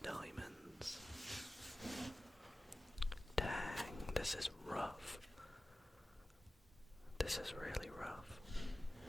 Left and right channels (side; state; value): both; normal; correlation 0.96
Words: diamonds. Dang, this is rough. This is really rough.